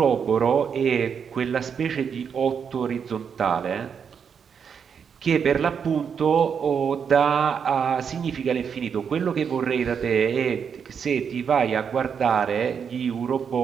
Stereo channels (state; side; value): quieter; left; 6.9 dB